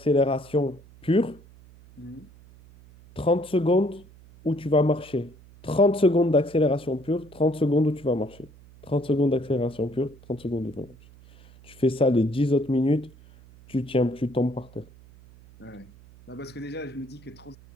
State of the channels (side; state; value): right; noise; hum, 23 dB below the sound